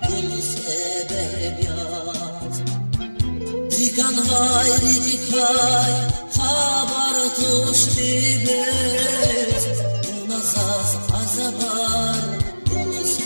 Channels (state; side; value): inverted; both; correlation -1.00